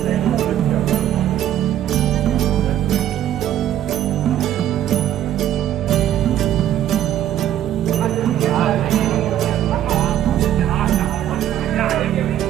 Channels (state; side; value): quieter; left; 11.5 dB